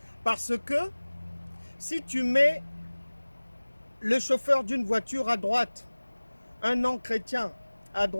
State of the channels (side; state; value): both; inverted; correlation -1.00